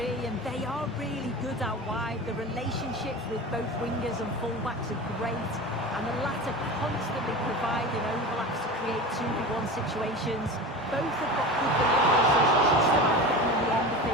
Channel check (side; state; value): both; normal; correlation 0.31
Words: and they are really good out wide. The relationships with both wingers and fullbacks are great, and the latter constantly providing overlaps to create 2v1 situations. Both have got good delivery, so it's just about getting on the end of